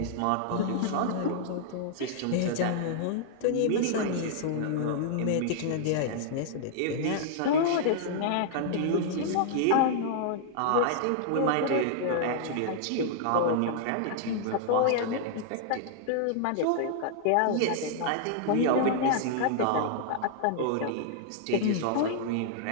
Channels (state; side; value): different; both; correlation -0.01